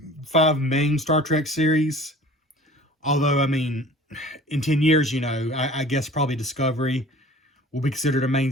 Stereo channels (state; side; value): normal; both; correlation 0.45